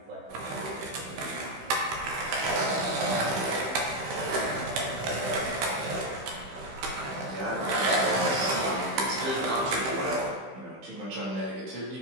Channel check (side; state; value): left; late; 15 ms